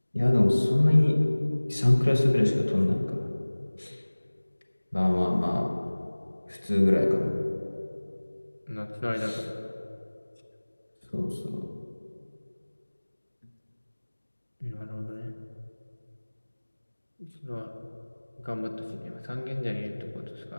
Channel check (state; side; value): inverted; both; correlation -1.00